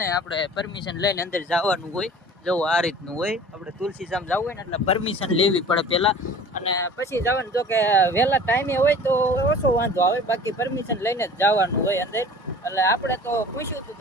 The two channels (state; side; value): normal; both; correlation 0.44